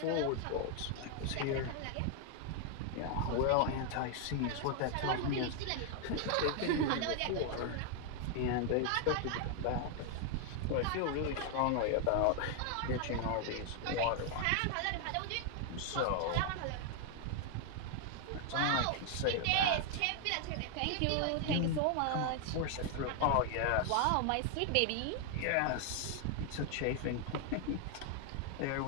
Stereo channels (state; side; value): different; both; correlation 0.00